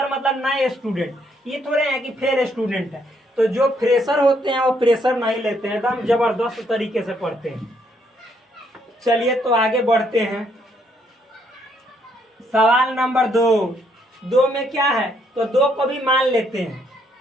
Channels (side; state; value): both; normal; correlation 0.71